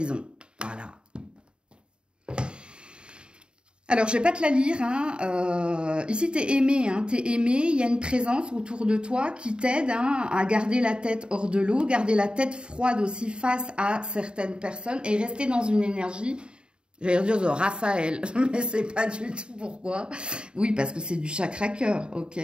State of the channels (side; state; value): left; late; 0.051 ms